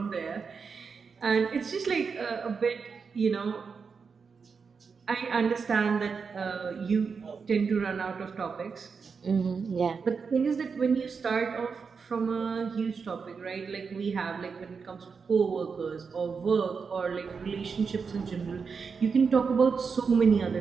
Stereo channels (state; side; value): quieter; left; 5.5 dB